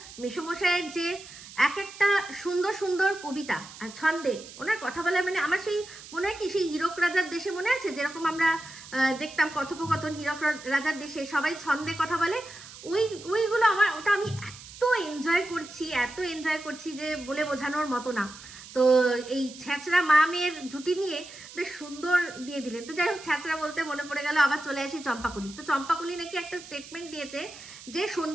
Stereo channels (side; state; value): right; noise; hiss, 16 dB below the sound